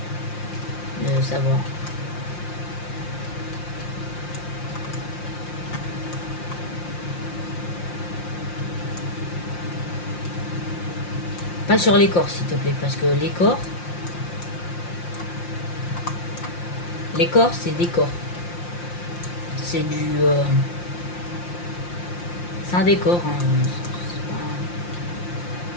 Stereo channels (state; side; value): late; right; 5.7 ms